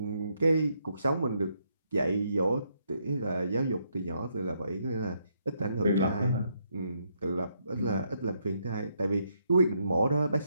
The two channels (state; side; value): inverted; both; correlation -0.76